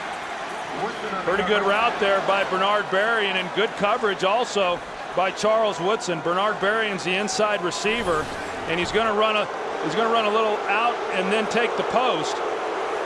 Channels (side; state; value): both; identical; correlation 1.00